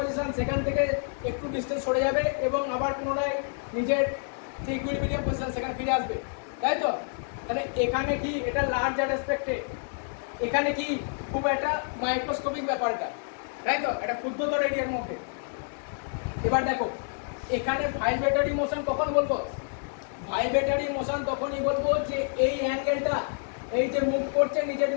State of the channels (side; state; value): right; silent; 57 dB below the other